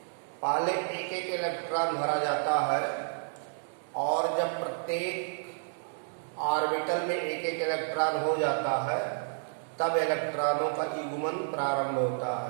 पहले एक एक इलेक्ट्रॉन भरा जाता है और जब प्रत्येक ऑर्बिटल में एक एक इलेक्ट्रॉन हो जाता है तब इलेक्ट्रॉनों का युग्मन प्रारंभ होता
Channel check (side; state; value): left; silent; digital silence